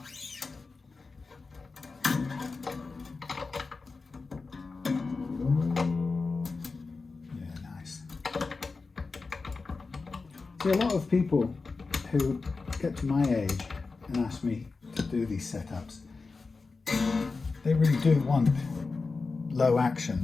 See, a lot of people who get to my age and ask me to do these setups, they really do want low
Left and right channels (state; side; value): quieter; right; 4.1 dB